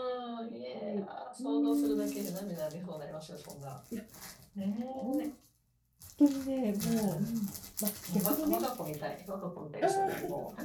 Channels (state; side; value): identical; both; correlation 1.00